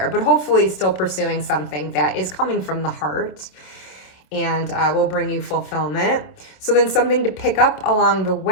but hopefully still pursuing something that is coming from the heart and will bring you fulfillment. So then something to pick up along the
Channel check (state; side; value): late; right; 27 ms